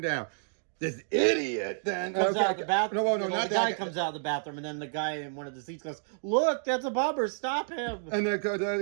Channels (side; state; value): left; silent; digital silence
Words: down. This idiot then comes out of the bathroom. No, not the guy comes out of the bathroom, and then the guy in one of the seats goes, "Look, that's a bomber! Stop him!" And